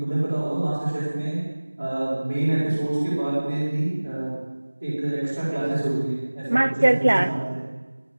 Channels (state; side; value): inverted; both; correlation -1.00